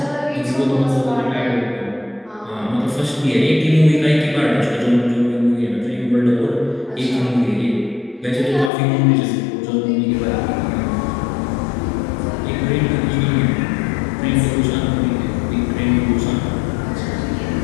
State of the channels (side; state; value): right; drops out; at 8.7 s